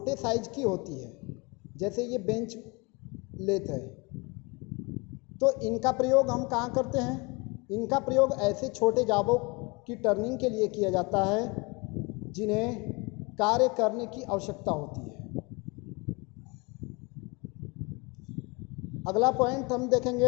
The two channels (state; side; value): quieter; right; 27.9 dB